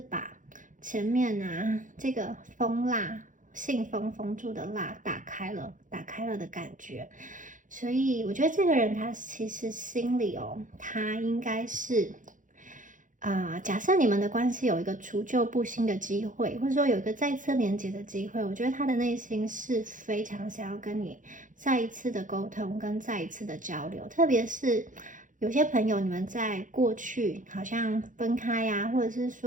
前面啊这个封蜡、信封封住的蜡打开了的感觉。所以我觉得这个人他其实心里哦，他应该是假设你们的关系有一个除旧布新的机会，或者说有一个再次连接的机会，我觉得他的内心是非常想要跟你再一次的沟通跟再一次的交流。特别是有些朋友，你们在过去好像分开呀，或者是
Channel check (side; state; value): left; late; 0.38 ms